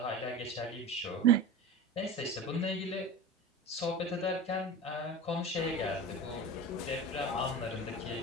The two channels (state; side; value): normal; both; correlation 0.31